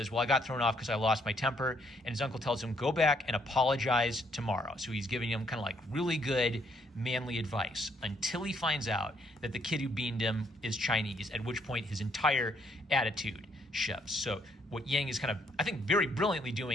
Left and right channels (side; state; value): both; normal; correlation 0.70